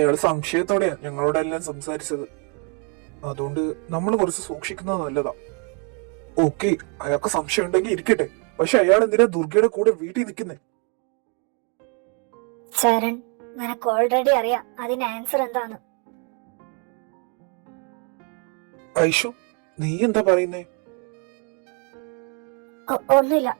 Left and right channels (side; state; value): left; quieter; 38.0 dB